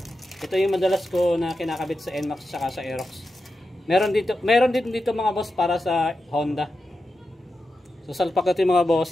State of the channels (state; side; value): normal; both; correlation 0.90